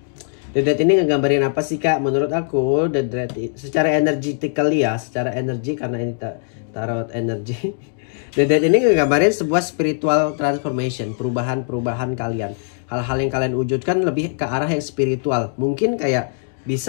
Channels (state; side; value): silent; right; digital silence